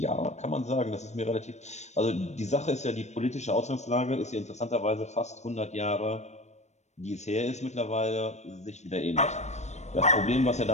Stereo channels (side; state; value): right; late; 0.33 ms